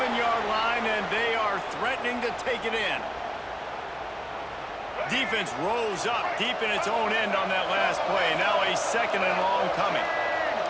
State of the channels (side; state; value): both; identical; correlation 1.00